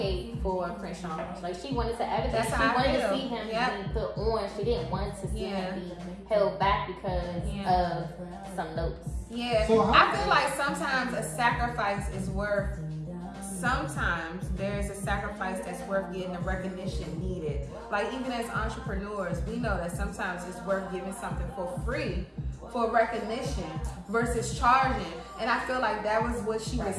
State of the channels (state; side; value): identical; both; correlation 1.00